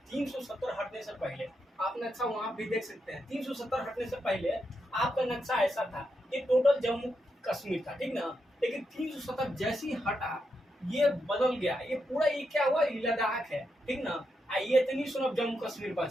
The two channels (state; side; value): normal; both; correlation 0.84